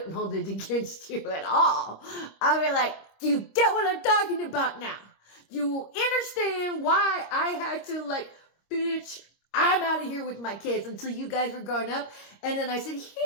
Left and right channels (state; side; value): late; right; 26 ms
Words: hold it against you at all. I'd be like, do you get what I'm talking about now? Do you understand why I had to bitch, I'm out of here with my kids until you guys were growing up? And then I said,